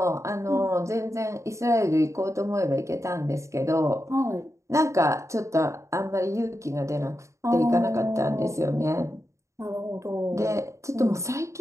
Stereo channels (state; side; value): late; left; 0.14 ms